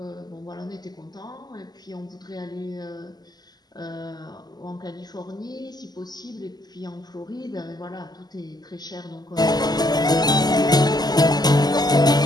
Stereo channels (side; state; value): right; late; 0.20 ms